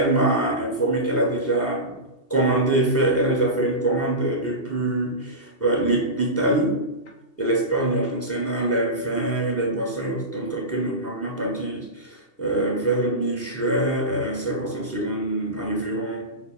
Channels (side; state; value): right; late; 2.7 ms